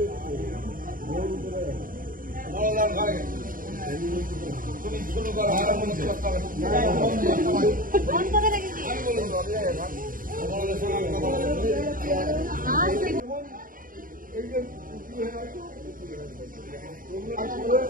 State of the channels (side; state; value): left; late; 0.40 ms